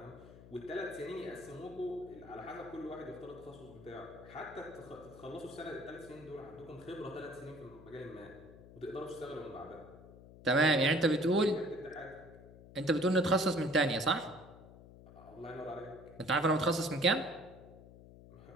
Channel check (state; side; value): noise; left; hum, 19 dB below the sound